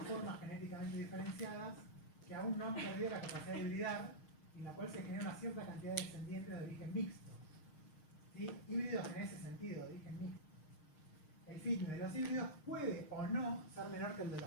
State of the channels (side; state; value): right; late; 6.5 ms